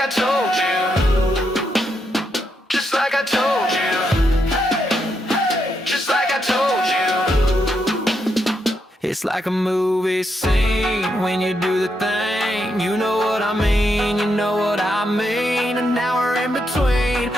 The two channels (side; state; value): both; normal; correlation 0.81